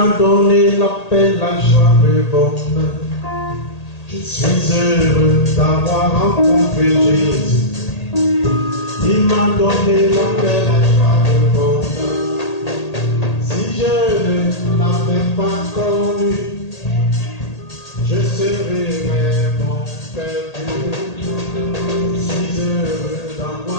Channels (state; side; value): late; right; 1.8 ms